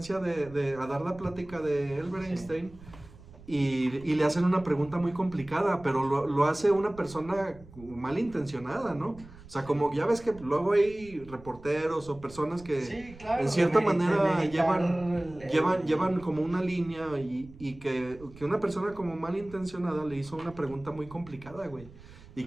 a dar la plática de Albert Sí. Einstein y le hacen una pregunta muy complicada, pero lo hace una persona malintencionada, ¿no? O sea, como ya ves que luego hay reporteros o personas que Sí, claro, en cierta de manera meditar llevan como una línea y que una persona como malintencionada le hizo una pregunta muy complicada, güey. Y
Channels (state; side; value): noise; right; rumble, 20 dB below the sound